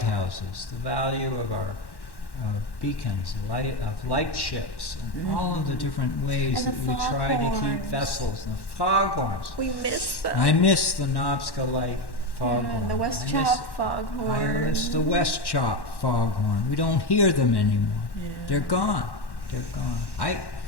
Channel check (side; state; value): right; late; 1.1 ms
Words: the value of our beacons, light ships, and all of the different ways And that the we try to keep foghorns. vessels, and the foghorns. We missed them. I miss the Knobska Light foghorn. And the West I miss- Chop foghorn. I miss the West Chop foghorn. We don't hear them anymore. Yeah. They're gone. They're gone.